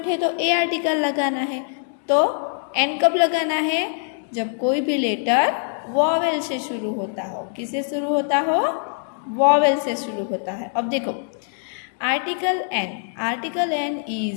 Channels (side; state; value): right; silent; digital silence